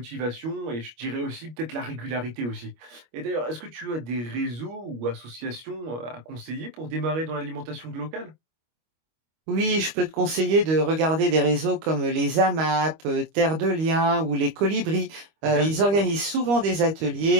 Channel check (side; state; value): left; late; 25 ms